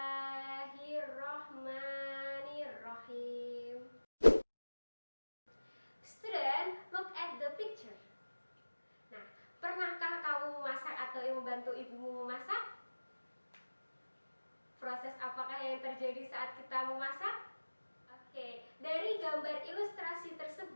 Student, look at the picture. Nah, pernahkah kamu memasak atau membantu ibumu memasak? Proses apakah yang terjadi saat kita memasak? Oke, dari gambar ilustrasi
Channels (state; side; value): inverted; both; correlation -1.00